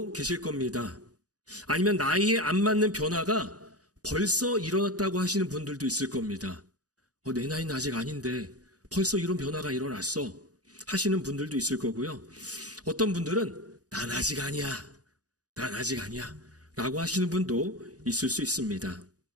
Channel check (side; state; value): left; late; 0.67 ms